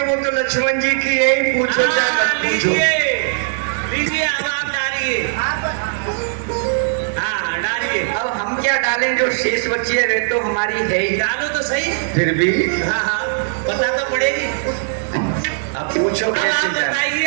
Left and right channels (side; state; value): left; silent; digital silence